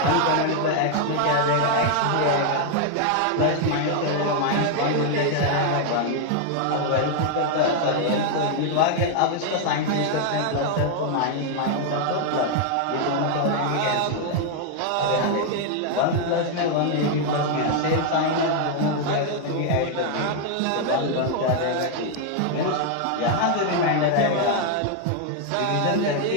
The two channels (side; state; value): both; different; correlation 0.00